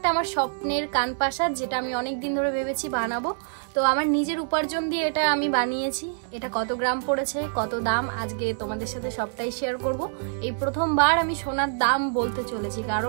আমার স্বপ্নের কানপাশা, যেটা আমি অনেক দিন ধরে ভেবেছি বানাবো। তো আমার নিজের উপার্জন দিয়ে এটা আমি বানিয়েছি। এটা কত গ্রাম পড়েছে, কত দাম, আজকে তোমাদের সাথে সবটাই শেয়ার করব। এই প্রথমবার আমি সোনার দাম বলতে চলেছি,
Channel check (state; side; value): silent; left; digital silence